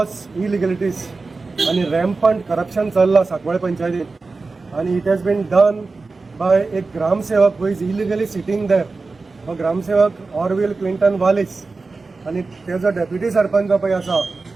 इलिगलिटीज आणि रॅम्पंट करप्शन चल्लां साकवाळ पंचायतीन आणि it has been done by एक ग्रामसेवक who is illegally sitting there हो ग्रामसेवक ऑरविल क्विंटन वालिस आणि तेजो डेप्युटी सरपंच पळय आसा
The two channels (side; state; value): left; quieter; 3.9 dB